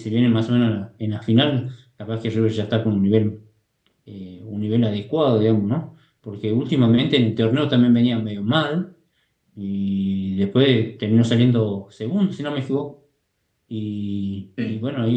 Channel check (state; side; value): identical; both; correlation 1.00